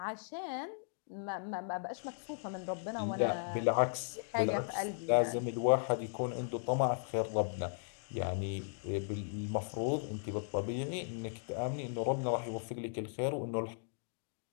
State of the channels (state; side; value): silent; right; digital silence